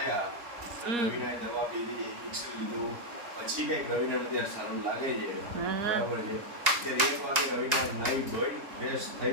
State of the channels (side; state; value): left; late; 3.8 ms